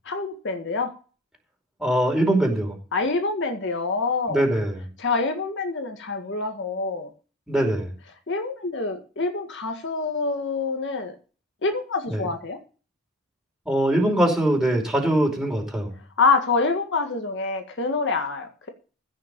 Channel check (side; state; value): both; normal; correlation 0.35